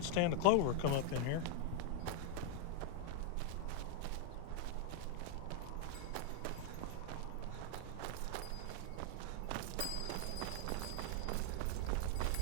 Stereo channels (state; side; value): different; both; correlation 0.00